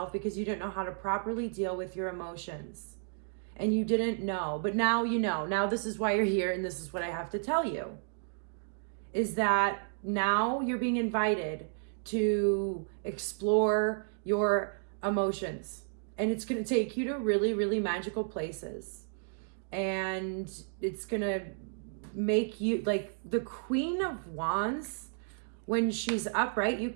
because you didn't know how to properly deal with your emotions. And you didn't know, but now you know. Now this is why you're here, and this is what I have to tell you, is that now you're being invited to explore your emotions. And it's going to take you to really, really magical places. And it's going to make you, like, the Queen of Wands, when she's upright, you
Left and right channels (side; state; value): left; silent; digital silence